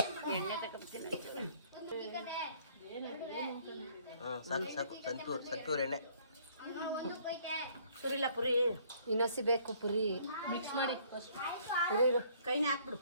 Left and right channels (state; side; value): inverted; both; correlation -0.61